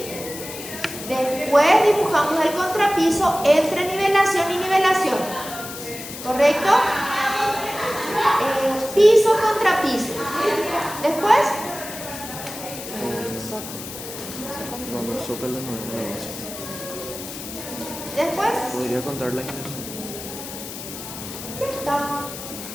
Después dibujamos el contrapiso entre nivelación y nivelación. ¿Correcto? Piso, contrapiso. Después, No, los zócalos no es la base. después, Podría contar la iglesia. ya está.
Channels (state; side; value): noise; left; hiss, 10 dB below the sound